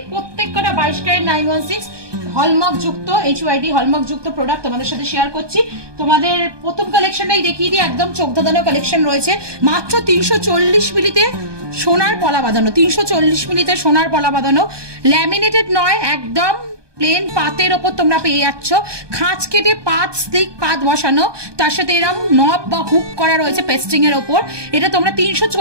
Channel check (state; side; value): late; left; 1.2 ms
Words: প্রত্যেকটা 22 ক্যারেট 916 হলমার্ক যুক্ত HYD হলমার্ক যুক্ত প্রোডাক্ট তোমাদের সাথে শেয়ার করছি। তোমাদের প্রথম কালেকশনটাই দেখিয়ে দিই, একদম চোখ ধাঁধানো কালেকশন রয়েছে। মাত্র 340 মিলিতে সোনার পলা বাঁধানো, 340 মিলিতে সোনার পলা বাঁধানো, ল্যামিনেটেড নয়, একদম প্লেন পাতের ওপর তোমরা পেয়ে যাচ্ছ। খাঁচ কেটে পাত স্লিক পাত বসানো, তার সাথে এরকম নব বা হুক করা রয়েছে পেস্টিং এর ওপর। এটা তোমরা